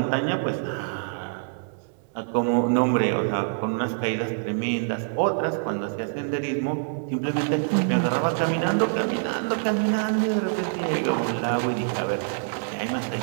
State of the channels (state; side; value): silent; left; 61 dB below the other